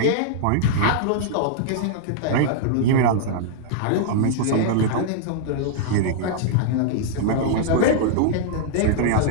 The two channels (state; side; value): different; both; correlation -0.01